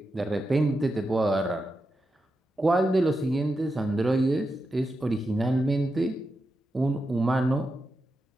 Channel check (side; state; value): both; normal; correlation 0.88